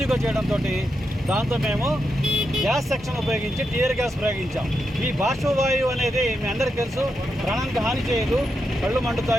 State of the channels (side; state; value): both; normal; correlation 0.85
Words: చేయడంతో దాంతో మేము గ్యాస్ సెక్షన్ ఉపయోగించి టీయర్ గ్యాస్ ప్రయోగించాం. ఈ బాష్పవాయువు అనేది మీ అందరికీ తెలుసు, ప్రాణానికి హాని చేయదు, కళ్ళు